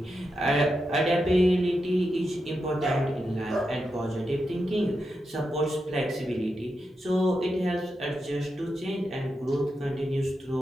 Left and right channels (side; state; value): both; normal; correlation 0.87